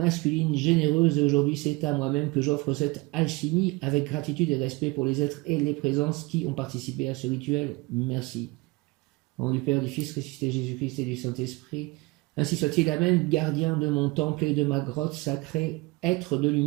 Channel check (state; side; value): quieter; left; 23.5 dB